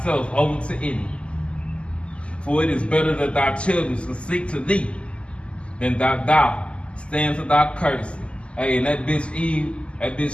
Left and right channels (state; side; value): late; right; 0.054 ms